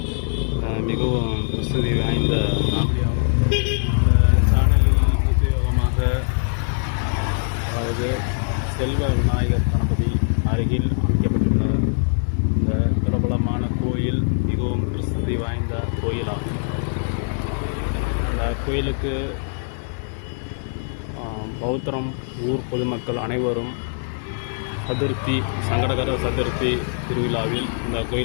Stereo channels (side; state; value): right; silent; digital silence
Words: மிகவும் பிரசித்தி வாய்ந்த காமெடியாகும். இந்த சேனலில் உபயோகமாக, அதாவது செல்வ விநாயகர் கணபதி அருகில் அமைக்கப்பட்டுள்ள இந்த பிரபலமான கோயில் மிகவும் பிரசித்தி வாய்ந்த கோயிலாகும். இந்த கோயிலுக்கு பௌத்தரம் ஊர் பொதுமக்கள் அனைவரும் சதுர்த்தி, சங்கடகர சதுர்த்தி திருவிழாவில் இந்த